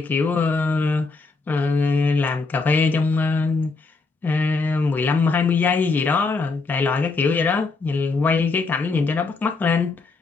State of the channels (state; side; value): quieter; right; 4.0 dB